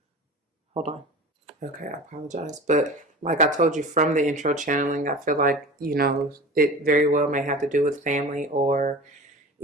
Hold on. Okay, I apologize. But like I told you from the intro channeling, I feel like, it very well may have to do with family, or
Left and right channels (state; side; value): normal; both; correlation 0.36